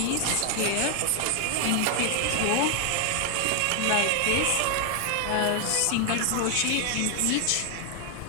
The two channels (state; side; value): different; both; correlation 0.00